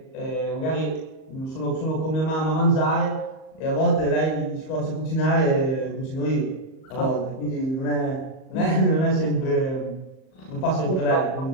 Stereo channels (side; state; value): right; late; 38 ms